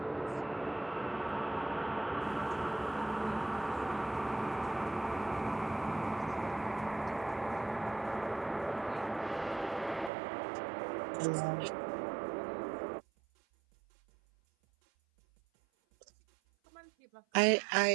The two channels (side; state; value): left; drops out; at 10.1 s